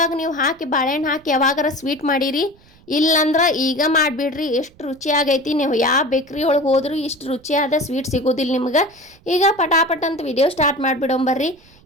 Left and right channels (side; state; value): right; noise; rumble, 28 dB below the sound